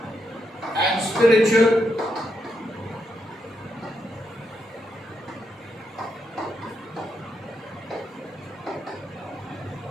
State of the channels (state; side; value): normal; both; correlation 0.82